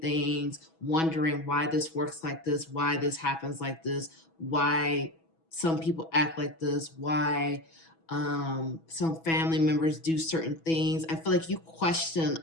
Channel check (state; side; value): late; right; 6.1 ms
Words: wondering why this works like this, why this happens like this, why some people act like this, why some family members do certain things. I feel like you question